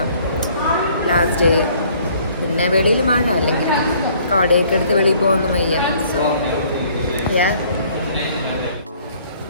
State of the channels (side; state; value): both; inverted; correlation -0.59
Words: ലാസ്റ്റ് ഡേ. പിന്നെ വെളിയിൽ മഴ അല്ലെങ്കിൽ കോടയൊക്കെ എടുത്ത് വെളിയിൽ പോകുന്നു വയ്യ. സോ